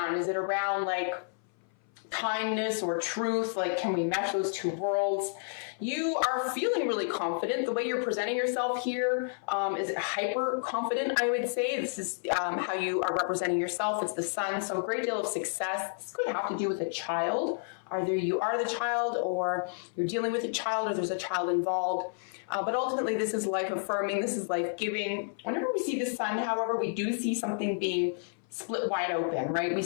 Is it around like kindness or truth? Like, can we mesh those two worlds? You are feeling really confident. The way you're presenting yourself here is hyper confident, I would say. This is how you are representing yourself. It's the sun, so a great deal of success. This could have to do with a child. Either you are the child, or you're dealing with a child, or there's a child involved. But ultimately, this is life affirming. This is life giving. Whenever we see the sun, however, we do see something being split wide open, right? We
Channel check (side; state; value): right; silent; 57 dB below the other